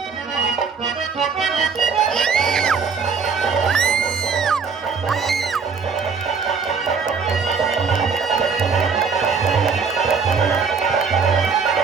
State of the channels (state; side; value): quieter; left; 5.5 dB